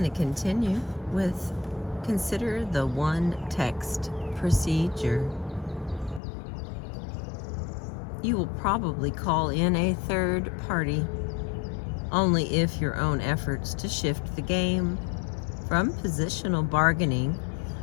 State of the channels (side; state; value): right; drops out; at 6.2 s